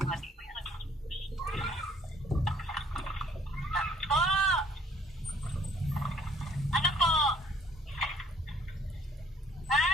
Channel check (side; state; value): both; normal; correlation 0.59